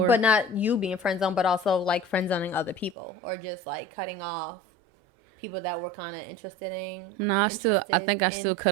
But not you being friend zoned, but also like friend zoning other people, or just like cutting off people that were kind of interested in. No, I think I still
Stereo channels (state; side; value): drops out; left; at 3.0 s